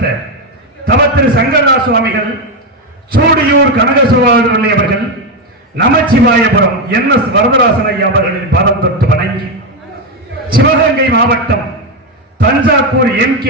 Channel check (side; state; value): both; normal; correlation 0.07